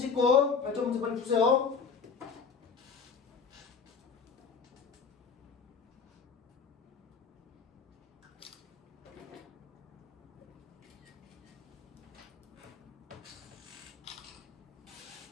발전 문제 빨리 푸세요.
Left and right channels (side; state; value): right; quieter; 5.7 dB